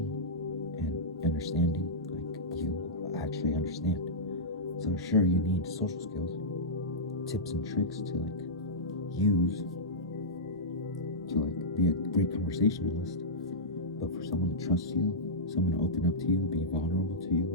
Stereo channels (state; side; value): normal; both; correlation -0.13